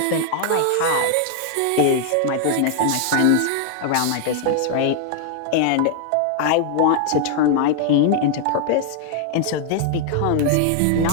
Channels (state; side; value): different; both; correlation 0.00